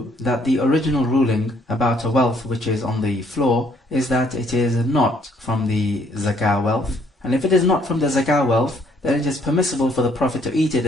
that the original ruling about a wealth which is on the floor is that it is not from the zakah wealth? And if it is not from the zakah wealth, then it is permissible for the Prophet to eat it,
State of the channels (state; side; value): normal; both; correlation 0.65